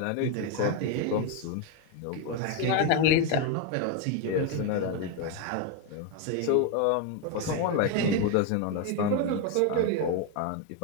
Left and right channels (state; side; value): different; both; correlation 0.01